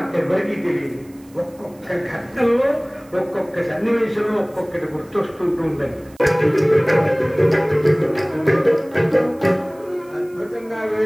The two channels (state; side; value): noise; right; hiss, 28 dB below the sound